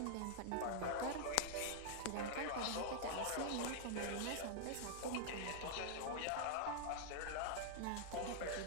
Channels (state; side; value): different; both; correlation -0.01